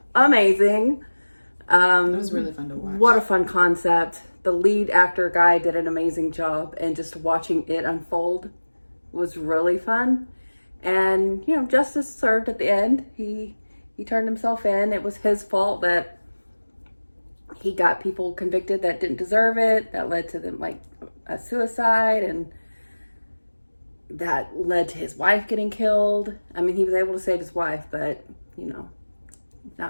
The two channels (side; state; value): both; inverted; correlation -1.00